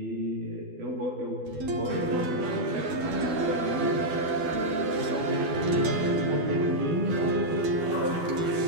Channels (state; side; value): late; left; 12 ms